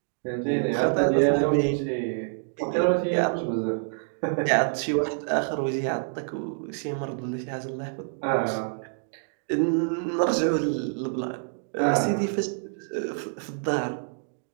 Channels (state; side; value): silent; left; digital silence